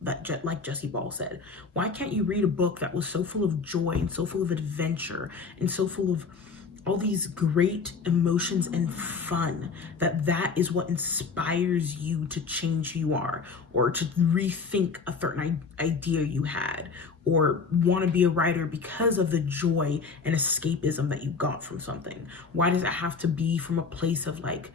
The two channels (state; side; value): quieter; right; 4.9 dB